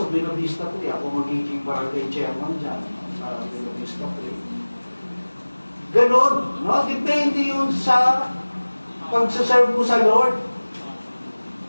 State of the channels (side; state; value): both; inverted; correlation -1.00